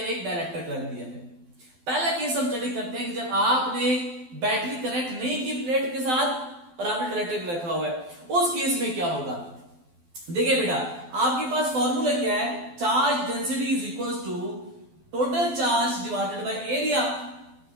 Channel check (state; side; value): late; left; 12 ms